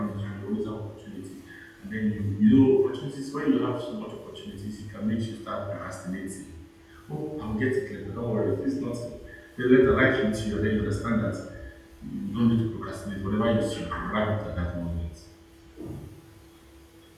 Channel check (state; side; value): identical; both; correlation 1.00